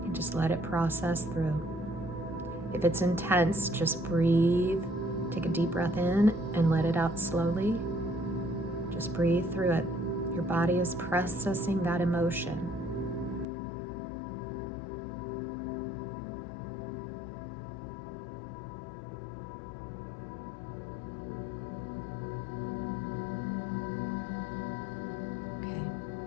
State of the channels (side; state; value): right; drops out; at 13.5 s